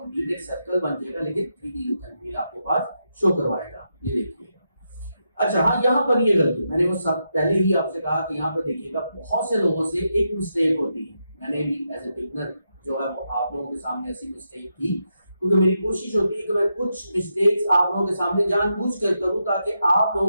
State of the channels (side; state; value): both; inverted; correlation -0.84